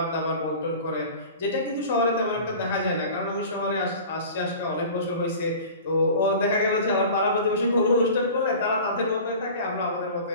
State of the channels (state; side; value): inverted; both; correlation -0.39